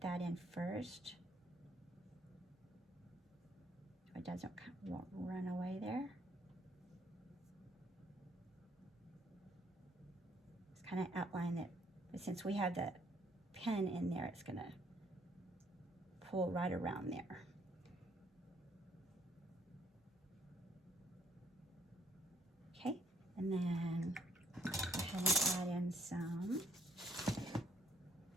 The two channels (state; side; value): normal; both; correlation 0.67